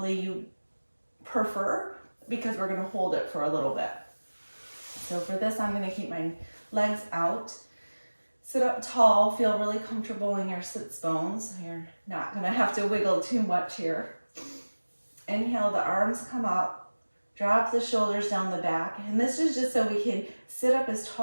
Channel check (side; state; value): both; inverted; correlation -1.00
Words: you prefer, because we're going to hold it for a little bit. So for this, I'm going to keep my legs out. Sit up tall, feel really comfortable in your sits bones. You're not going to have to wiggle too much here. Inhale, the arms come up, drop the shoulders down the back. And this is just so we can sit up as